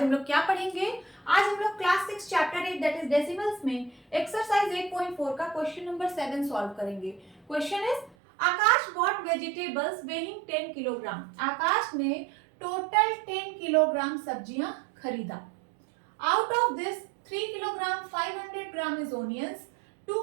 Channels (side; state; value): left; drops out; at 8.2 s